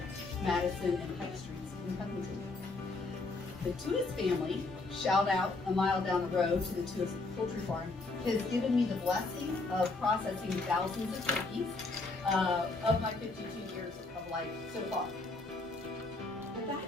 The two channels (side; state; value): right; quieter; 3.4 dB